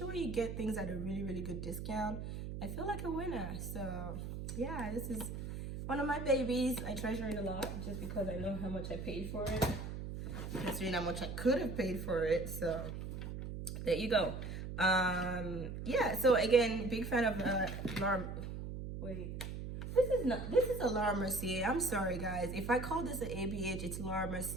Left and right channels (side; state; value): right; noise; hum, 6 dB below the sound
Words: when you get things at a really good discount, I feel like a winner. So yeah, this is one of my babies. I treasure it a lot just because I know how much I paid for it, considering how much I could have paid for it. So there you go. Yeah, so again, big fan of Laura. Wait, this is a Laura Mercier. I'm sorry guys, if I call this an ABH, it's Laura